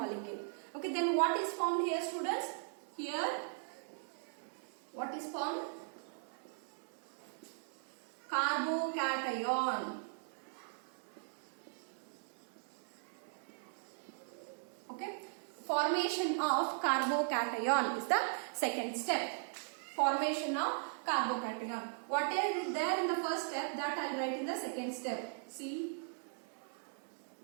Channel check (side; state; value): left; silent; digital silence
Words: Okay, then what is formed here, students? Here, what is formed? Carbocation. Okay, formation of carbocation is the second step. Formation of carbocation. What is there in the first step, that I will write in the second step. C